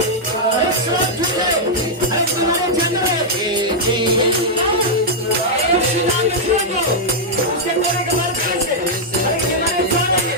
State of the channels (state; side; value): normal; both; correlation -0.05